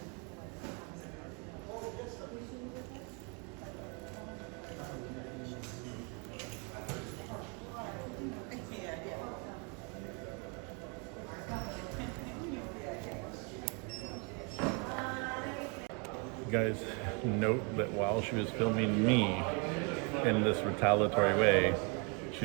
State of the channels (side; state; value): left; quieter; 34.5 dB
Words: Guys, note that while she was filming me in this retaliatory way,